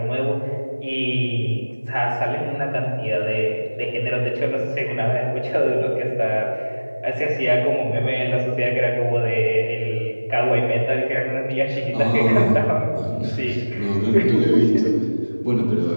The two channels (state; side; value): inverted; both; correlation -1.00